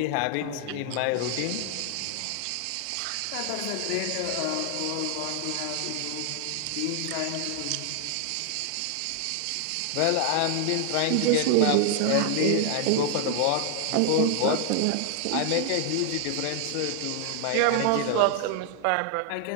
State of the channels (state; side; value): different; both; correlation 0.00